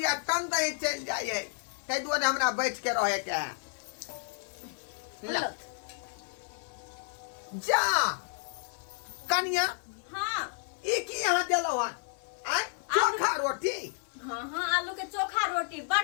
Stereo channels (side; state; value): right; silent; 57 dB below the other